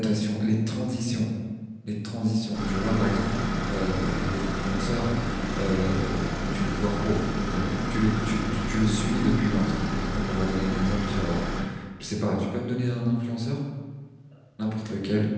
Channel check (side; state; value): both; identical; correlation 1.00